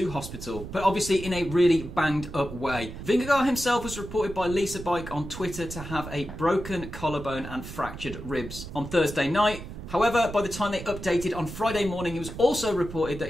hospital, but obviously in a really banged up way. Vingegaard himself was reported by Lisa Bike on Twitter to have a broken collarbone and fractured ribs on Thursday night. However, by the time they updated on Friday morning, it was also reported that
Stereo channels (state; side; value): noise; right; rumble, 11 dB below the sound